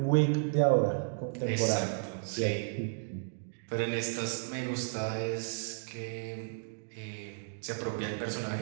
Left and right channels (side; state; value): left; silent; digital silence